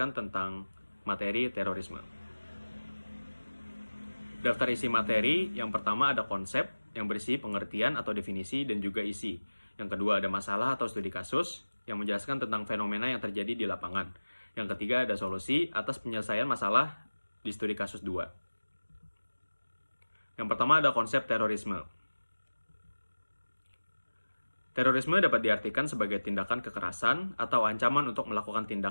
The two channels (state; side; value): inverted; both; correlation -1.00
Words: tentang materi terorisme. Daftar isi materi, yang pertama ada konsep yang berisi pengertian atau definisi dan juga isi. Yang kedua ada masalah atau studi kasus yang menjelaskan tentang fenomena yang terjadi di lapangan. Yang ketiga ada solusi atas penyelesaian masalah di studi kasus 2. Yang pertama ada konsep terorisme. Terorisme dapat diartikan sebagai tindakan kekerasan atau ancaman untuk melakukan